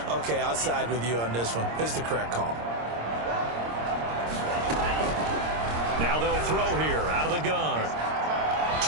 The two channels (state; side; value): late; left; 26 ms